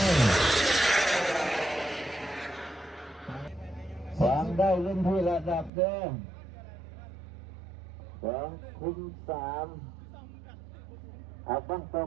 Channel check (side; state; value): left; drops out; at 5.7 s